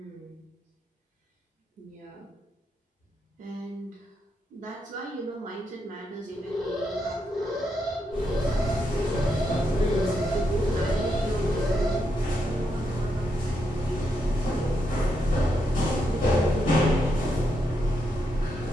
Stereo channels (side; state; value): both; normal; correlation 0.81